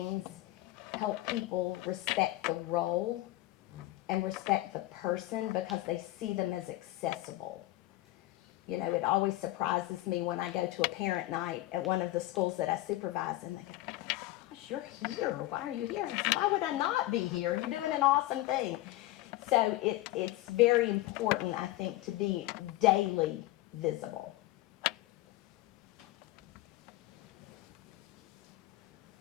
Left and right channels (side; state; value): right; quieter; 17.3 dB